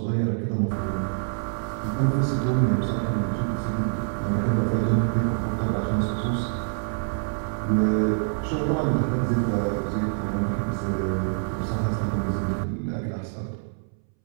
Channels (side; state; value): left; silent; 61 dB below the other